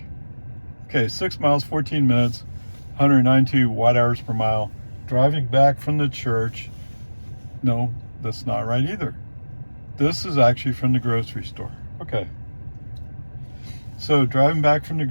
Okay, 6 miles, 14 minutes, 192 watt hours per mile. Driving back from the church. No, that's not right either. This is actually from the grocery store. Okay. So driving back from the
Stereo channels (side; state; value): both; inverted; correlation -1.00